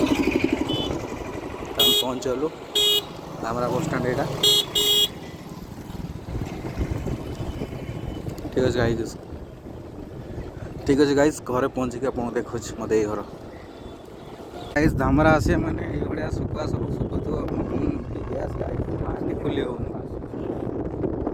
पहुँचलु धामरा बस स्टैंड यहाँ। ठीक अच्छे गाइस ठीक अच्छे गाइस घरे पहुँचिक आप देखु मत ये घर गाइस धामरा आसे मैंने ये सुखा सब सुखुआ खुली हो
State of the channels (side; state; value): both; identical; correlation 1.00